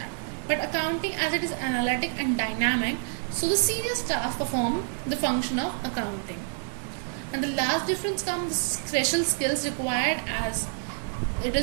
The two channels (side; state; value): left; silent; 60 dB below the other